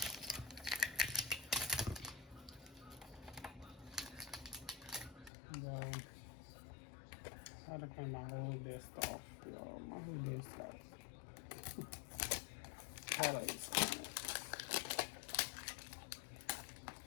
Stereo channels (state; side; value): drops out; right; at 5.3 s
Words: Well, I had to clean my whole desk off, y'all. My whole desk off. Holidays.